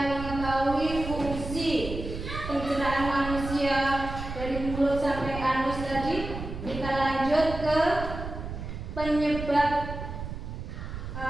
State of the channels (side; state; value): right; noise; rumble, 8 dB below the sound